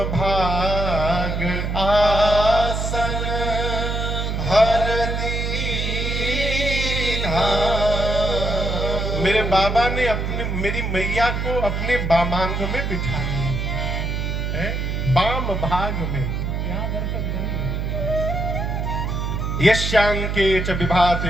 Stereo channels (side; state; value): right; noise; hum, 1 dB below the sound